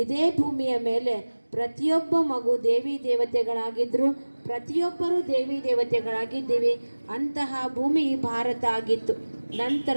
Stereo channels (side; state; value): both; inverted; correlation -1.00